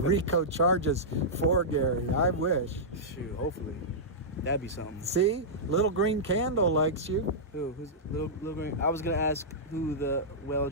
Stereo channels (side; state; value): both; normal; correlation -0.13